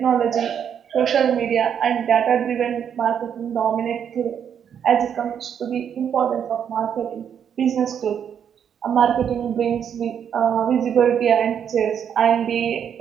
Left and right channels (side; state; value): left; quieter; 8.3 dB